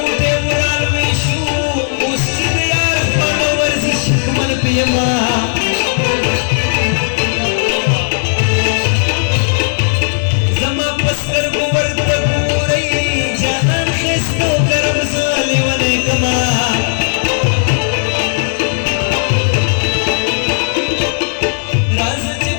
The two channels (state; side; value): silent; right; digital silence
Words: उराल विशू उस्तिद यार फॉलोवर्स शिकमन पियमा जमा पस्कर गोवर्त पूरई जहान खिस्तो करम साले वने कमा